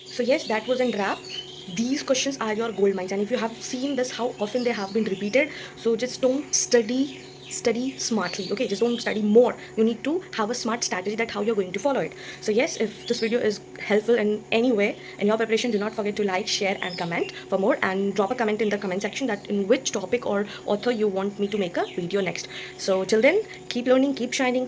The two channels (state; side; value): identical; both; correlation 1.00